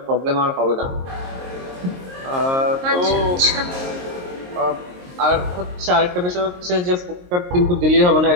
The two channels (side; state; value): left; late; 22 ms